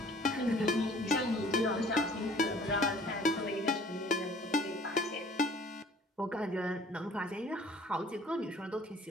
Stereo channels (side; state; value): both; normal; correlation 0.53